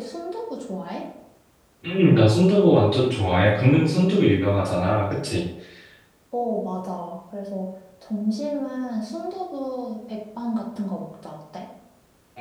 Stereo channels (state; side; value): identical; both; correlation 1.00